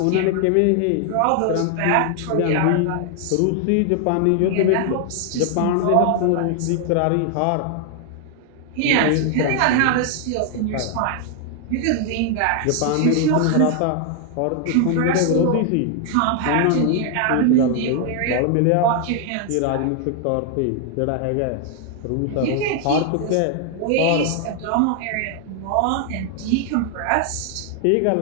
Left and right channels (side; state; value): both; different; correlation 0.00